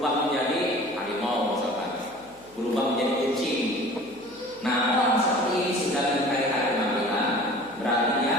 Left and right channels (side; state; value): left; noise; hum, 28 dB below the sound